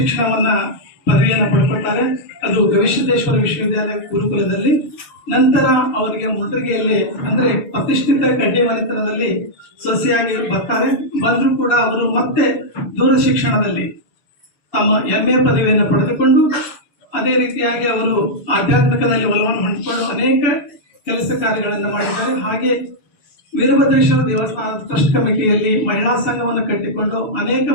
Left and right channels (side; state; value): right; late; 6.8 ms